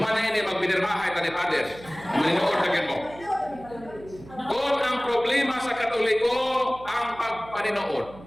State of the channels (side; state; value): right; noise; hum, 19 dB below the sound